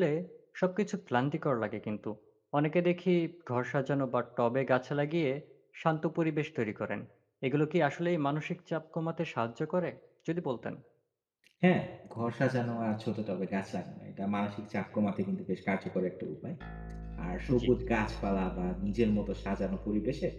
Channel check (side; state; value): both; identical; correlation 1.00